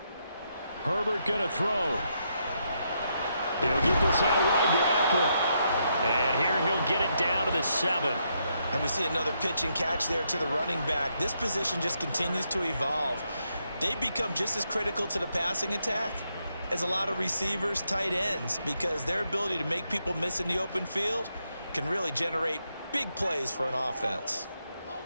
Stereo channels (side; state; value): both; inverted; correlation -0.79